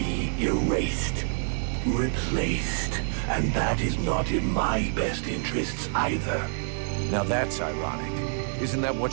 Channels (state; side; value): silent; left; 60 dB below the other